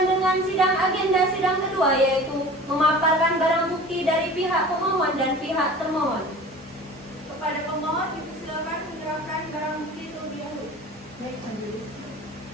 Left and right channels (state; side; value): normal; both; correlation 0.40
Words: dengan agenda sidang kedua, yaitu memaparkan barang bukti dari pihak pemohon dan pihak termohon. Kepada pemohon, dipersilakan menyerahkan barang bukti terlebih dahulu. Baik, Majelis.